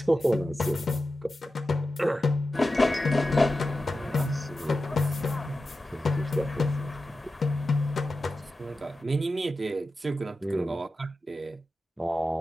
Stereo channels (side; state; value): both; normal; correlation 0.92